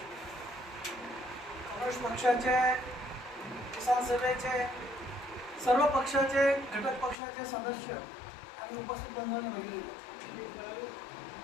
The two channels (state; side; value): drops out; right; at 7.2 s